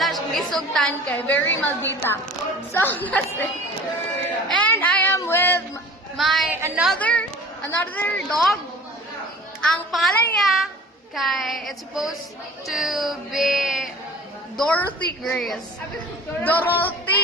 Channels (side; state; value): both; normal; correlation 0.44